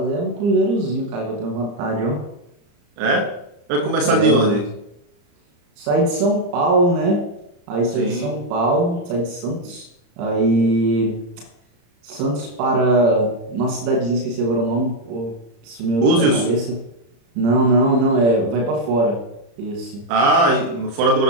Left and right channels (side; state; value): left; late; 35 ms